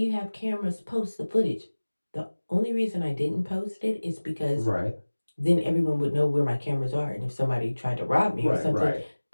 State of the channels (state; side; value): inverted; both; correlation -1.00